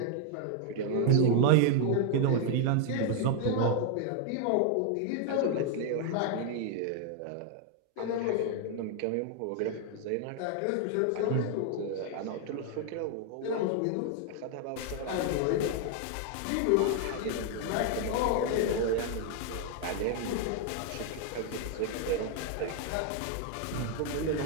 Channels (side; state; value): both; different; correlation 0.00